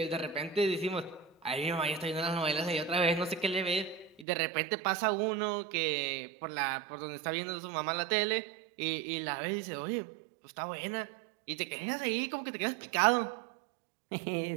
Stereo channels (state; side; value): drops out; left; at 4.2 s